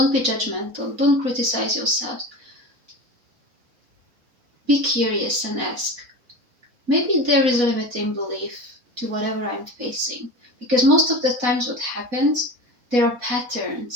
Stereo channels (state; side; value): late; left; 4.1 ms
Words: judgmental. Don't criticize yourself. Be curious and ask. Maybe there is a limiting belief to whatever I'm facing. Because most of the times what happens, there are